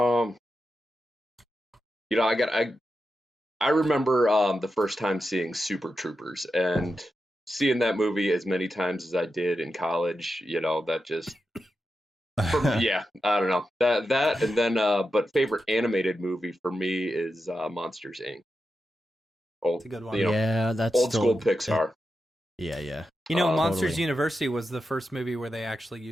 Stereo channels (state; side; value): normal; both; correlation 0.89